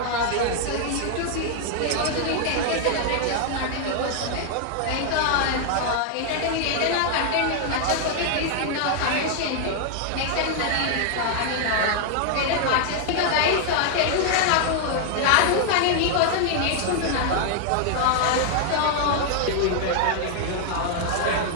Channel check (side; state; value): both; different; correlation 0.00